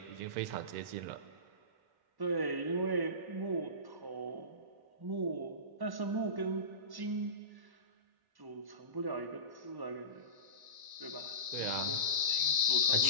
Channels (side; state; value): left; late; 1.1 ms